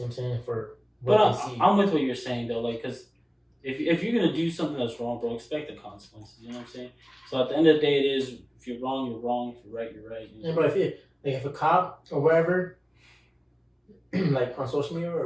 know what I'm saying, for what But they see. I'm with what you're saying though, like, cause if you're gonna do something that's wrong, bro, expect the consequences. You know what I'm saying? So at the end of the day, it is if you're wrong, you're wrong. If you're right, you're right. You know? Yeah, but if a cop or wherever, like on social media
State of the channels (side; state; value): both; identical; correlation 1.00